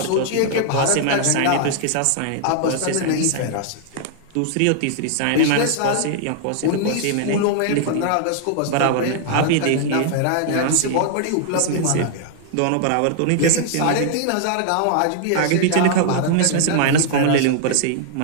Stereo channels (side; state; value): both; different; correlation -0.01